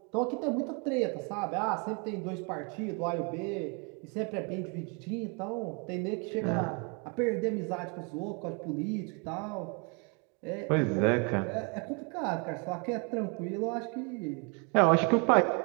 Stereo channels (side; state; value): left; quieter; 34.4 dB